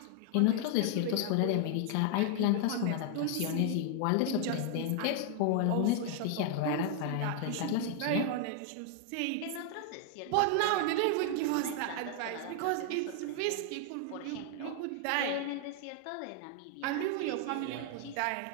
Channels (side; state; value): both; different; correlation 0.00